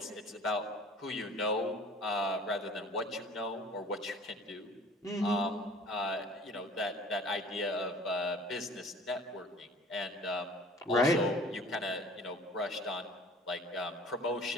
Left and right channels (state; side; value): normal; both; correlation 0.48